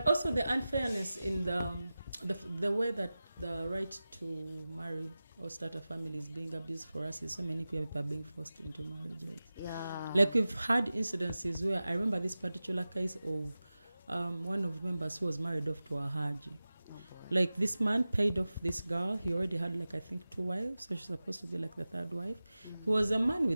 also the unfairness in the way that the right to marry or start a family is being abused for us is so many queer people are being forced into marriages. yeah. Like we've had incidences where I remember this particular case of one of the members who was married off to a Haji. Like this man paid off this girl. He already had like I think 2 wives, so she's supposed to be like the 3rd wife. He was a man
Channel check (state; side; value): inverted; both; correlation -0.96